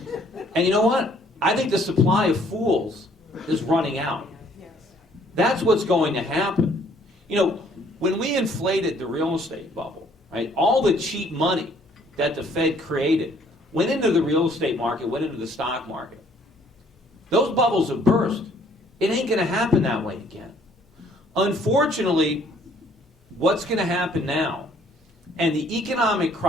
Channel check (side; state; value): both; normal; correlation 0.61